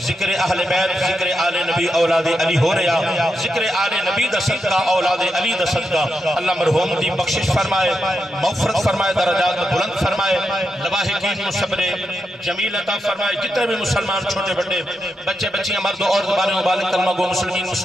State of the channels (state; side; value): normal; both; correlation 0.85